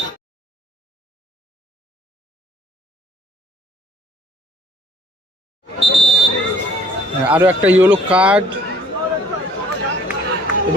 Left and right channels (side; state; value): both; normal; correlation 0.59